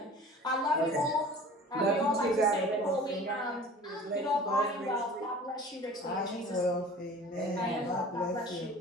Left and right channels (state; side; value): normal; both; correlation 0.43